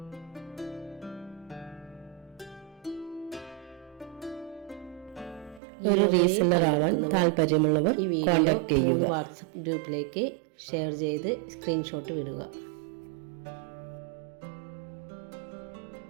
ഒരു റീസെല്ലർ ആവാൻ താല്പര്യമുള്ളവർ കോൺടാക്ട് ചെയ്യുക. വാട്സപ്പ് ഗ്രൂപ്പിലേക്ക് ഷെയർ ചെയ്ത് സ്ക്രീൻഷോട്ട് വിടുക.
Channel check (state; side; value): drops out; left; at 5.6 s